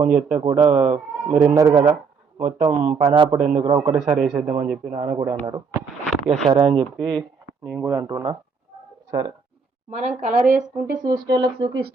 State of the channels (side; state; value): left; quieter; 5.4 dB